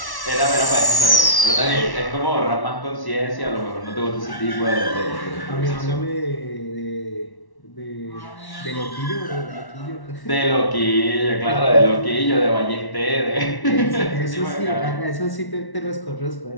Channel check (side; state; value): right; late; 1.1 ms